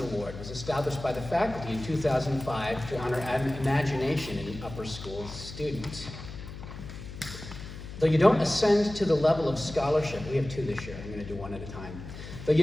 Award was established by the faculty in 2005 to honor imagination in an upper school student. Though you don't ascend to the level of scholarship, we have two this year, I'm going to do one at a time. Though you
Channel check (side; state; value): left; noise; hum, 11 dB below the sound